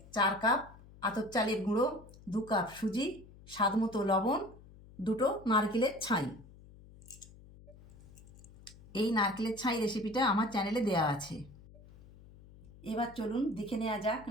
4 কাপ আতপ চালের গুঁড়ো, 2 কাপ সুজি, স্বাদ মতো লবণ, 2টো নারকেলের ছাই। এই নারকেলের ছাই রেসিপিটা আমার চ্যানেলে দেওয়া আছে। এবার চলুন দেখে নেওয়া যাক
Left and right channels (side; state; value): left; noise; hum, 21 dB below the sound